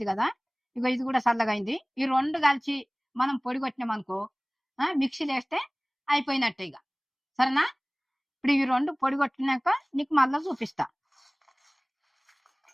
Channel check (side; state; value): both; identical; correlation 1.00